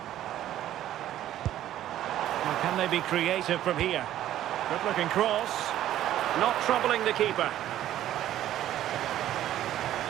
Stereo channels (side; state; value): left; quieter; 12.6 dB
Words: Well, can they be creative from here? Good-looking cross. Not troubling the keeper.